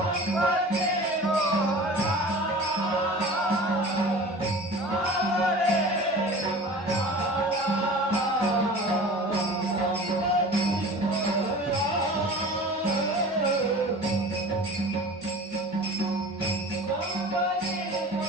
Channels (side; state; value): both; normal; correlation 0.40